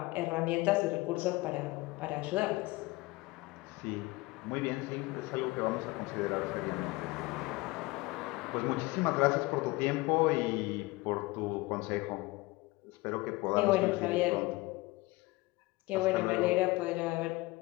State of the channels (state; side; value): quieter; right; 21.8 dB